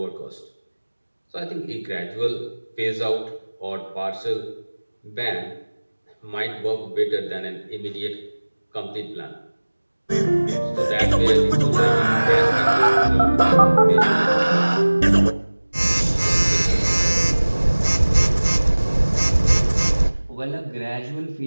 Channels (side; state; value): both; inverted; correlation -1.00